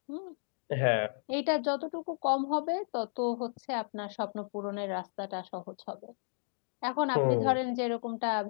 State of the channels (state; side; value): silent; right; digital silence